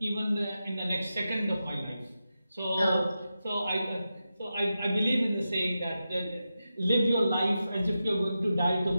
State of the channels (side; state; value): both; inverted; correlation -0.90